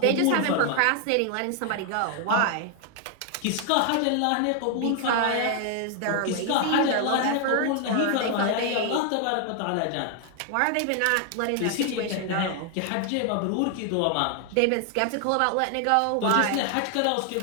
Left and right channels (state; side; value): different; both; correlation 0.00